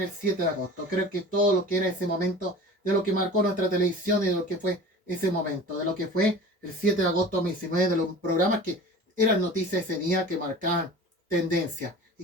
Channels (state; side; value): normal; both; correlation 0.38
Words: el 7 de agosto. Creo que todo lo que era ese momento de lo que marcó nuestra televisión y de lo que fue ese momento, de lo que fue el 7 de agosto de 2019, de los programas que eran noticias ese día que marcaban tendencia.